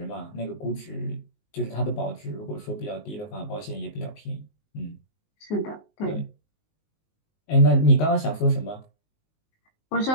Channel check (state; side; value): late; right; 19 ms